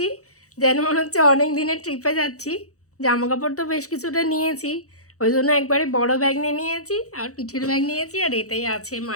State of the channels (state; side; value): late; right; 0.65 ms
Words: যেন মনে হচ্ছে অনেক দিনের ট্রিপে যাচ্ছি। জামা কাপড় তো বেশ কিছুটা নিয়েছি, ওই জন্য একবারে বড় ব্যাগ নিয়ে নিয়েছি, আর পিঠের ব্যাগ নিয়েছি, আর এটাই আছে